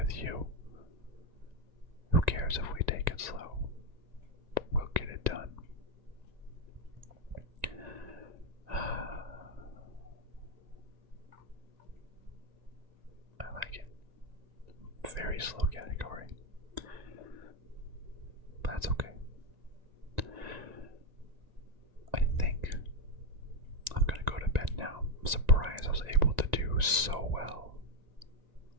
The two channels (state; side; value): late; left; 1.9 ms